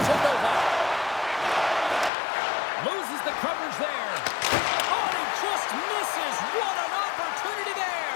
Novak. Loses the coverage there. Oh, he just misses. What an opportunity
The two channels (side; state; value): right; drops out; at 2.1 s